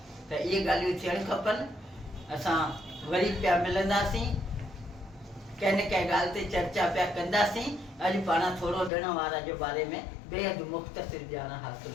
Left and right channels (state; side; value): drops out; right; at 8.9 s